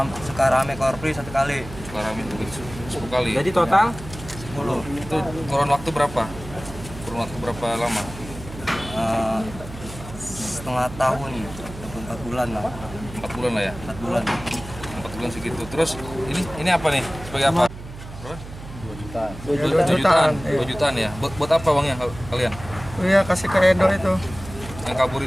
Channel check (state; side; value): noise; right; hum, 13 dB below the sound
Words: Sukarame Korpri 1 kali. Sukarame 10 kali. Jadi total 10. Itu kurun waktu berapa? Kurun waktu berapa lama? Setengah tahun, 4 bulan lah. 4 bulan lah ya. 4 bulan. 4 bulan segitu. Terus ini apa nih? Sebagai apa? Berapa? 2 jutaan. 2 jutaan ya. Buat apa uangnya kalian? Iya, kasih ke Edo itu. Yang kabur